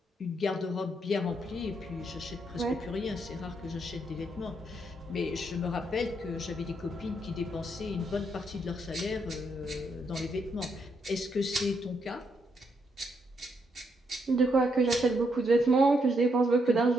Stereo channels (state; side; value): normal; both; correlation 0.76